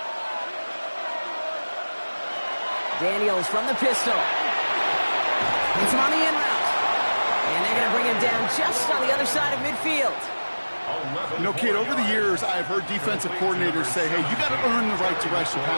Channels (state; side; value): inverted; both; correlation -1.00